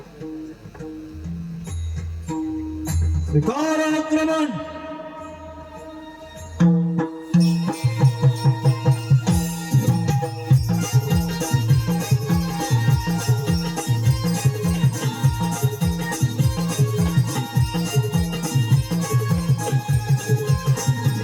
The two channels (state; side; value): identical; both; correlation 1.00